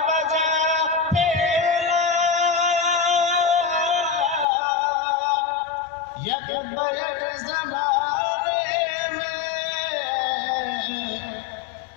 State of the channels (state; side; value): drops out; right; at 4.5 s